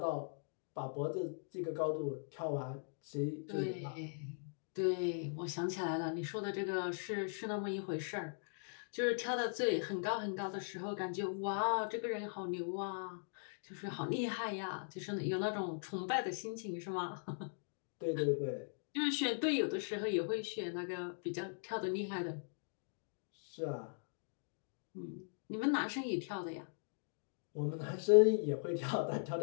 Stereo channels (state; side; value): silent; right; digital silence